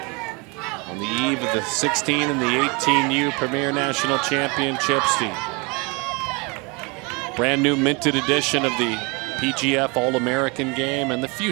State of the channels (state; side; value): quieter; left; 29.2 dB